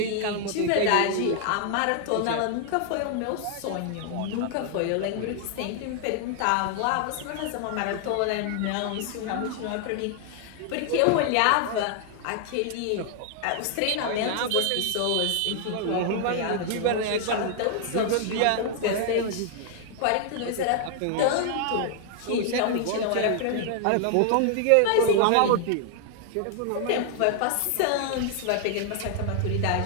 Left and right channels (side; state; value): both; different; correlation 0.00